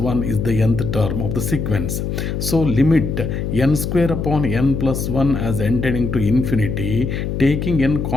is the nth term of the sequence. So limit n square upon n plus 1 as n tending to infinity, taking n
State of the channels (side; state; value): left; noise; hum, 3 dB below the sound